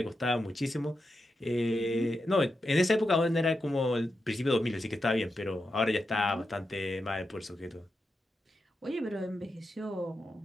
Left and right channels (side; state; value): both; normal; correlation 0.88